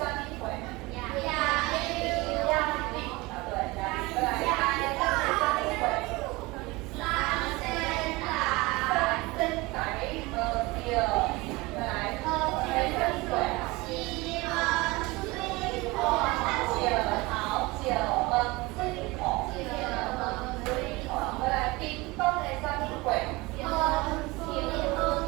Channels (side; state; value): left; quieter; 22.6 dB